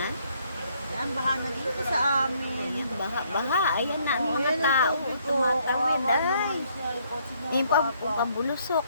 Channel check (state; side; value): inverted; both; correlation -0.69